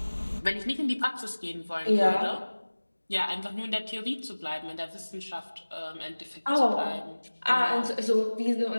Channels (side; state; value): both; inverted; correlation -1.00